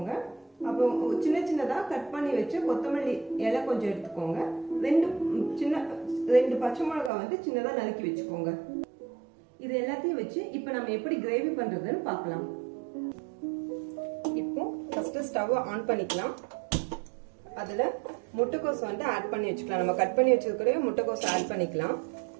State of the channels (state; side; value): drops out; left; at 7.1 s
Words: அப்புறம் சின்ன சின்னதாக கட் பண்ணி வச்சு கொத்தமல்லி இலை கொஞ்சம் எடுத்துக்கோங்க. 2 பச்சை மிளகாய் சின்னதாக நறுக்கி வச்சுக்கோங்க. இது எல்லாத்தையும் வச்சு இப்போ நம்ம எப்படி கிரேவி பண்றதுன்னு பார்க்கலாம். இப்போ ஃபர்ஸ்ட் ஸ்டவ் ஆன் பண்ணிக்கலாம். அதுல முட்டைக்கோஸ் ஆட் பண்ணி வச்சுக்கலாம். நம்ம கட் பண்ணி வச்சிருக்கிற முட்டைக்கோஸ் ஆட் பண்ணிக்கலாம்.